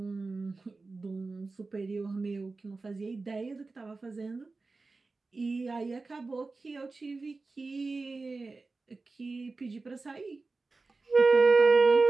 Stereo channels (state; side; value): quieter; left; 3.7 dB